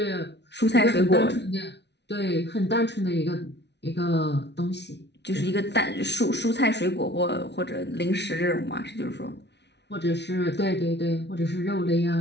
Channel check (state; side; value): late; right; 0.50 ms